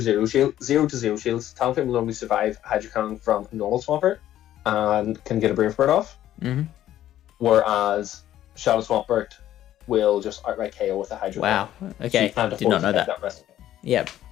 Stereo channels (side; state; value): right; quieter; 12.5 dB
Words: shield, 0-0 shields. Talonflame will normally survive Hydro Cannon from normal Swampert and can get a Brave Bird off. Mm-hmm. Whereas Shadow Swampert will just outright KO with a Hydro Cannon. Wow. Okay. So did not know that. Yep.